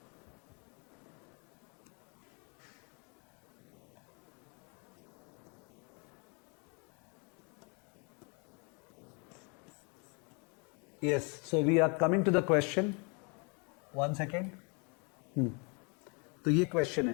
Yes, so we are coming to the question. 1 second. तो ये क्वेश्चन है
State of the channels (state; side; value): quieter; right; 33.9 dB